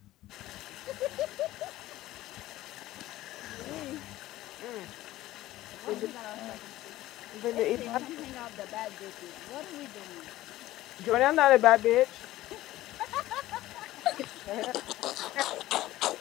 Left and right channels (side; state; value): right; quieter; 15.9 dB